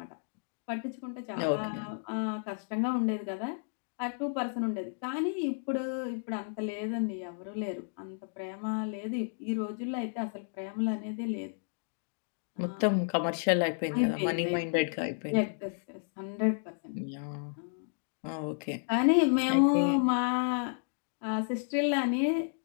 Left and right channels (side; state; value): right; silent; digital silence